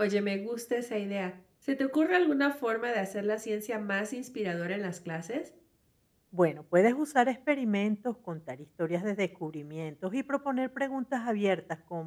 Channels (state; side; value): identical; both; correlation 1.00